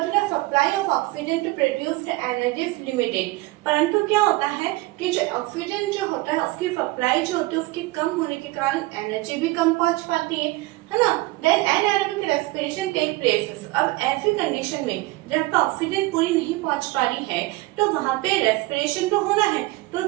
the supply of oxygen to produce the energy is limited. परंतु क्या होता है कि जो ऑक्सीजन जो होता है उसकी सप्लाई जो होती है उसके कम होने के कारण एनर्जी भी कम पहुंच पाती है ना। Then anaerobic respiration take places. अब ऐसी कंडीशन में जब ऑक्सीजन पूरी नहीं पहुंच पा रही है तो वहां पे रेस्पिरेशन तो होना है, तो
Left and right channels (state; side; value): quieter; left; 20.2 dB